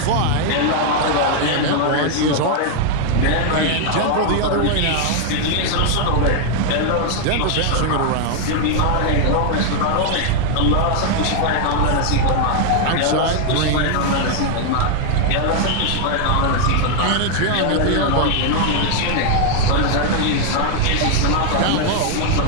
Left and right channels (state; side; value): different; both; correlation 0.00